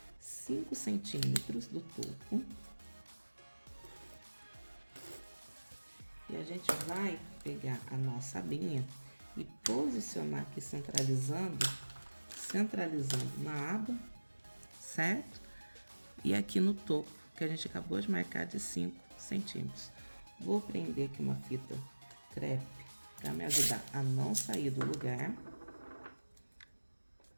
5 centímetros do topo. E a gente vai pegar a nossa abinha e posicionar aqui, centralizando na aba, certo? E aqui no topo, que a gente acabou de marcar de 5 centímetros. Vou prender aqui uma fita crepe para me ajudar a não sair do lugar.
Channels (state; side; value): inverted; both; correlation -1.00